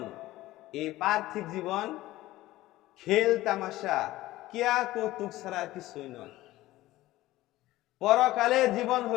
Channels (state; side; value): quieter; right; 16.8 dB